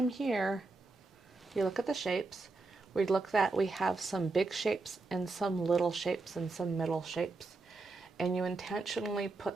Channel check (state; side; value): quieter; left; 3.5 dB